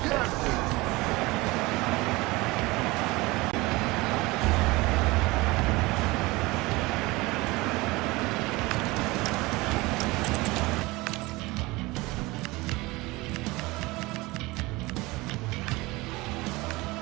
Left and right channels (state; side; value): quieter; left; 22.1 dB